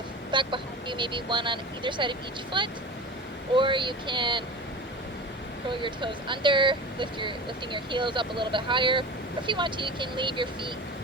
back behind you, maybe one on either side of each foot. Or you can curl your toes under, lifting your heels up a little bit higher. Or if you want to, you can leave your feet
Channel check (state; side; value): normal; both; correlation 0.32